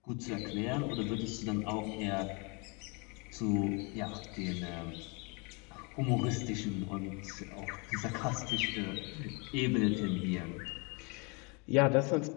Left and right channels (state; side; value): quieter; right; 31.4 dB